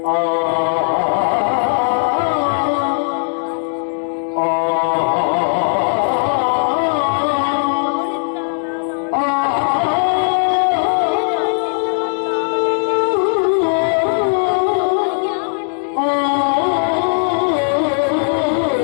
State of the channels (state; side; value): silent; right; digital silence